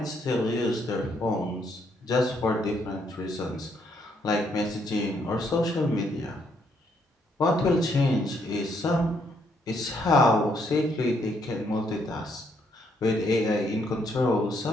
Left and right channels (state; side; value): normal; both; correlation 0.72